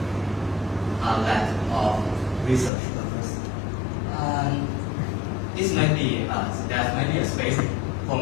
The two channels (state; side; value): drops out; right; at 2.7 s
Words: a lack of research purpose. This might be, there might be a space for